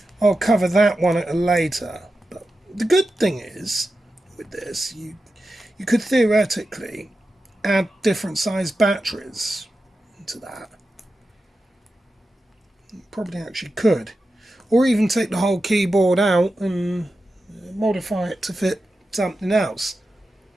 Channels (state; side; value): normal; both; correlation 0.91